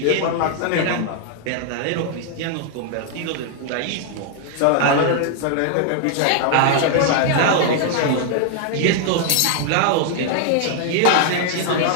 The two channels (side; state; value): both; different; correlation 0.00